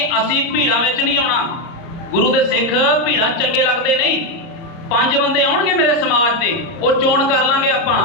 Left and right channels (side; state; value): right; late; 30 ms